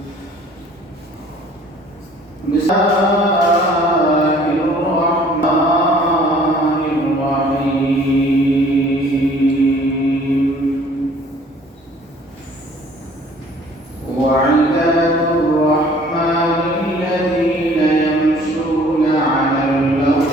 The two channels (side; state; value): both; normal; correlation 0.54